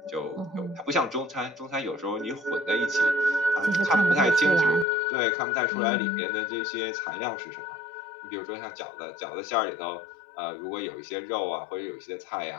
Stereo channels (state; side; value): drops out; right; at 4.9 s